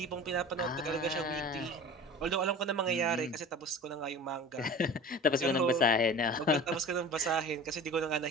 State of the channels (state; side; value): normal; both; correlation 0.38